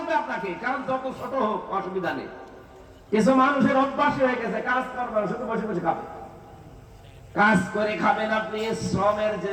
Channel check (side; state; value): both; identical; correlation 1.00